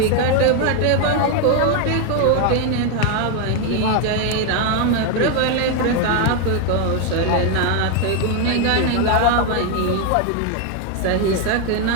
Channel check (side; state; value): both; different; correlation 0.01